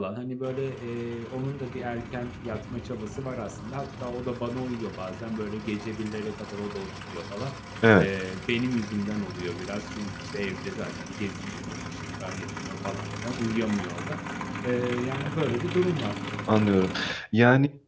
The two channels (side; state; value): both; identical; correlation 1.00